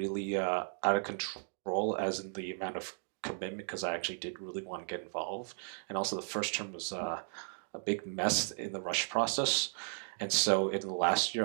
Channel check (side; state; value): left; silent; digital silence